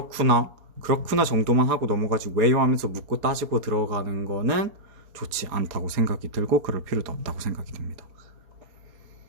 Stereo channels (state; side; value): late; left; 4.3 ms